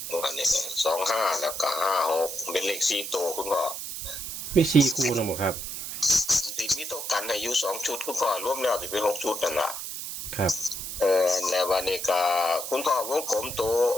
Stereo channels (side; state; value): right; noise; hiss, 7 dB below the sound